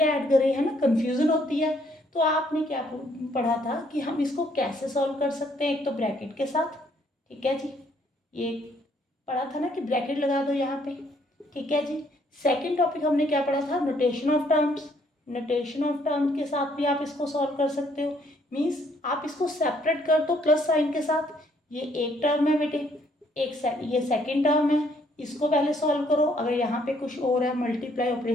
ऐड करें, है ना, कंफ्यूजन होती है। तो आपने क्या पढ़ा था कि हम इसको कैसे सॉल्व कर सकते हैं। एक तो ब्रैकेट के साथ, ठीक है जी, ये पढ़ा था ना कि ब्रैकेट लगा दो यहाँ पे, ठीक है जी। सेकंड टॉपिक हमने क्या पढ़ा था, notation of terms. Notation of terms के साथ भी आप इसको सॉल्व कर सकते हो। मीन्स आप इसको सेपरेट कर दो प्लस साइन के साथ। ये एक टर्म है बेटे, ये सेकंड टर्म है, इसको पहले सॉल्व करो। अगर यहाँ पे कुछ और है, मल्टीप्लाई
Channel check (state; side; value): normal; both; correlation 0.67